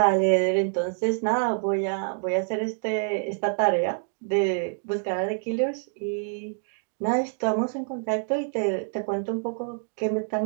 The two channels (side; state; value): left; silent; digital silence